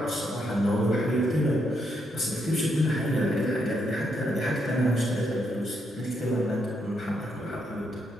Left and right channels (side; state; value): both; normal; correlation 0.78